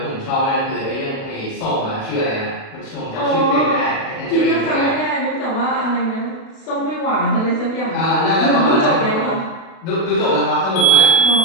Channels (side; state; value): right; late; 36 ms